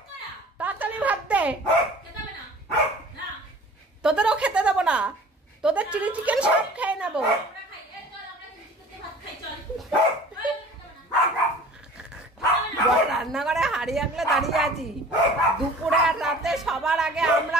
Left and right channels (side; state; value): both; normal; correlation 0.45